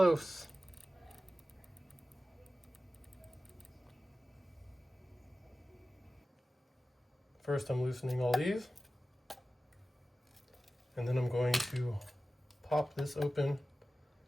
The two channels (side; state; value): both; normal; correlation 0.95